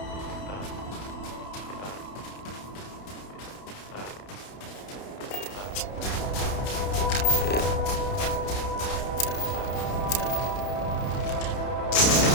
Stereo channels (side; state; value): right; late; 31 ms